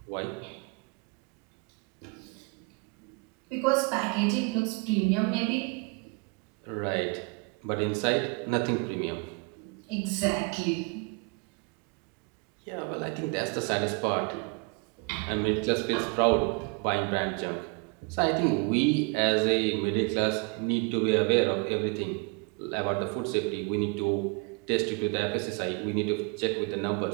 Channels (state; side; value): quieter; left; 31.5 dB